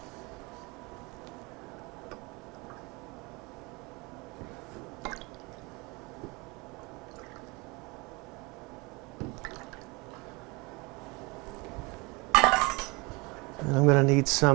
And I'm going to need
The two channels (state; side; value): quieter; left; 26.2 dB